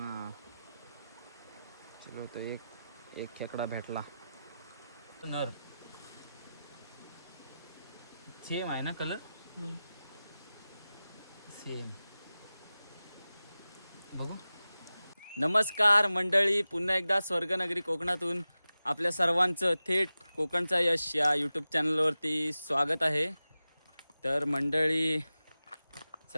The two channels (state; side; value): inverted; both; correlation -0.95